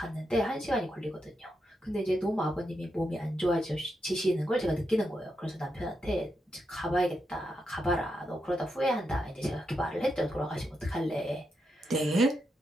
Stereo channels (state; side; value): normal; both; correlation 0.84